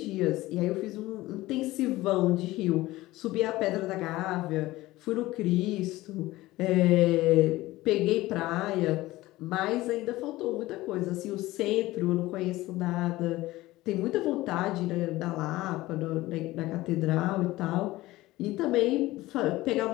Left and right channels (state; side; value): quieter; right; 18.0 dB